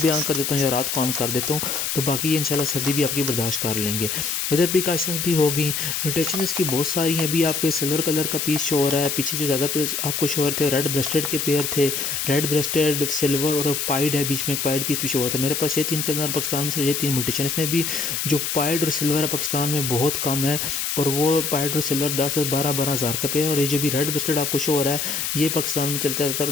भी ऑन कर देता हूँ, या रात को ऑन कर देता हूँ। तो बाकी ये इंशाल्लाह सर्दी भी आपकी बर्दाश्त कर लेंगे। वेदर प्रिकॉशंस भी हो गई। म्यूटेशन इसकी बहुत सारी हैं। अभी आपको सिल्वर कलर का पीस शो हो रहा है, पीछे जो ज़्यादा आपको शो हो रहे थे रेड ब्रेस्टेड के पेयर थे, रेड ब्रेस्टेड, सिल्वर और पाइड है, बीच में एक पाइड पीस भी शो हुआ था। मेरे पास ये 3 कलर पाकिस्तान में सिर्फ ये 3 म्यूटेशन। इसमें भी जो पाइड और सिल्वर है पाकिस्तान में बहुत कम है, और वो पाइड और सिल्वर 10-12 हज़ार का पेयर। और ये जो भी रेड ब्रेस्टेड आपको शो हो रहा है ये पाकिस्तान में चलता रहता है,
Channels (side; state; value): left; noise; hiss, 1 dB below the sound